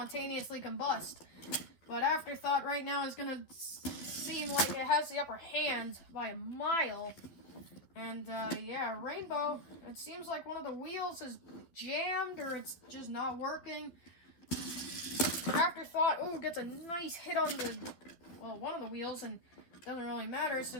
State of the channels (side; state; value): right; late; 11 ms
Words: combust. But Afterthought right now is going to seem like it has the upper hand by a mile. And, yeah, Rainbow, it seems like one of the wheels is jammed or it's just not working. Afterthought, ooh, gets a nice hit on one of the wheels, and it doesn't really matter